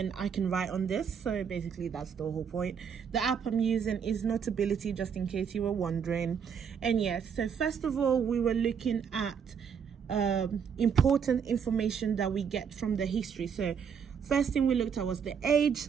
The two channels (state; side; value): quieter; left; 7.0 dB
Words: I can write on this. So basically that's the whole point. The app I'm using is Notability, just in case you were wondering. And yes, so first of all, we were looking at important information that we get from the history. So first thing we looked at was the age,